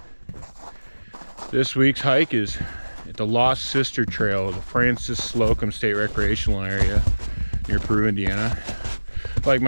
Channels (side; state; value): both; inverted; correlation -1.00